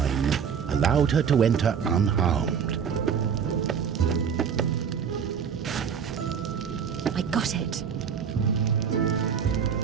allowed her to enter unharmed. I got it.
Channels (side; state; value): left; quieter; 7.1 dB